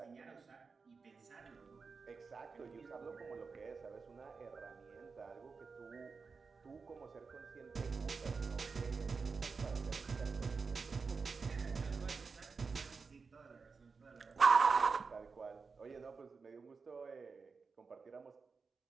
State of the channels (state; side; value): quieter; left; 4.8 dB